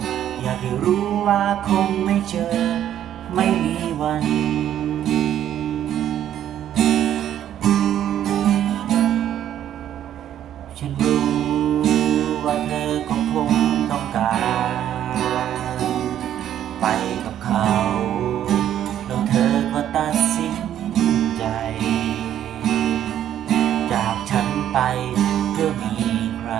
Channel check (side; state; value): left; quieter; 10.9 dB